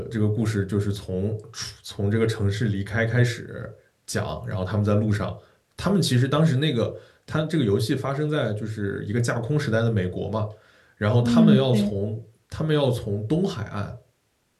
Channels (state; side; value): identical; both; correlation 1.00